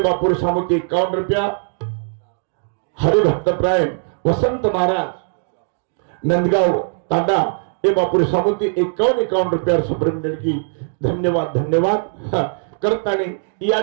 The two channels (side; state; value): left; silent; digital silence